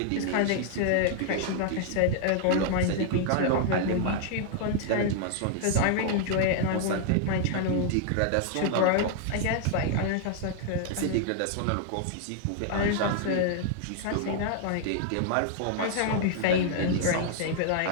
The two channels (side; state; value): both; different; correlation -0.01